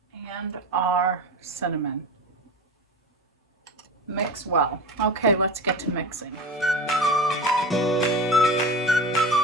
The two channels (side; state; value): both; normal; correlation 0.30